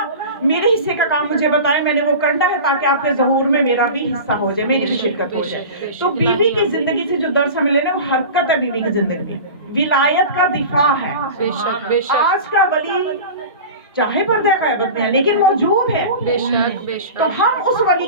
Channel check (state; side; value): inverted; both; correlation -0.33